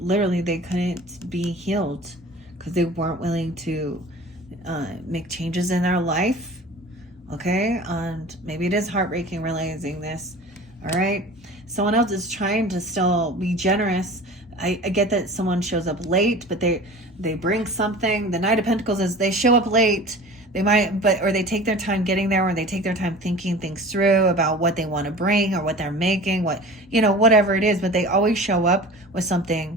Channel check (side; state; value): both; normal; correlation 0.39